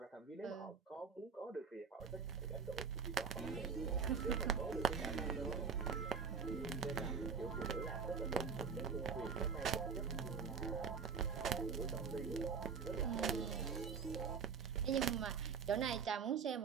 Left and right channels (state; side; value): quieter; left; 6.0 dB